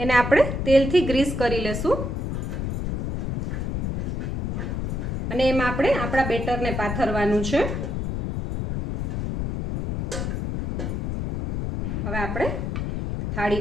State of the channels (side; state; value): left; noise; rumble, 1 dB below the sound